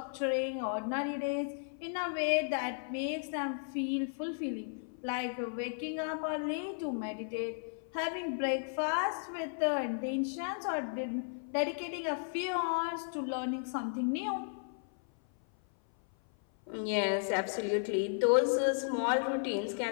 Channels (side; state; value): right; silent; 55 dB below the other